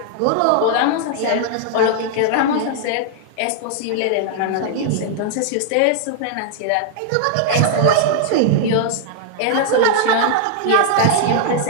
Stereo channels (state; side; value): different; both; correlation -0.01